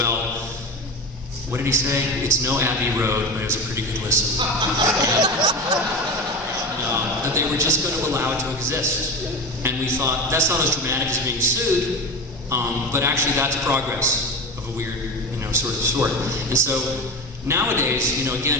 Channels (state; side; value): normal; both; correlation 0.26